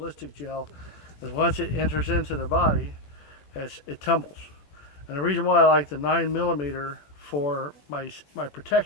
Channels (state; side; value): late; right; 21 ms